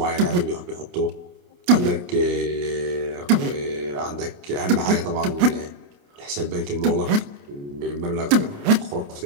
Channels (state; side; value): late; left; 28 ms